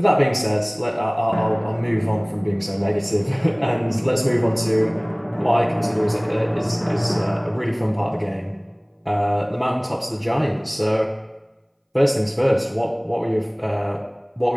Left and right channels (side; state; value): both; identical; correlation 1.00